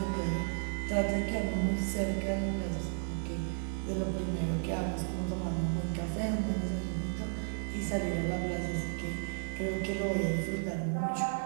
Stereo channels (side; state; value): left; silent; digital silence